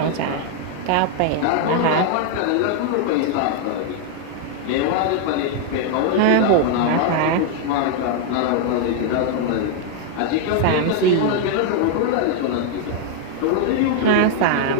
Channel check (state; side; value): different; both; correlation 0.00